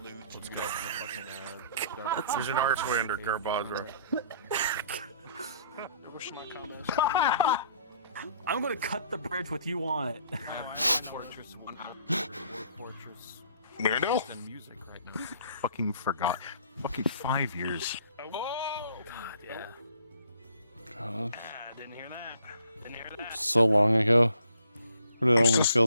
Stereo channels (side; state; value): both; inverted; correlation -0.61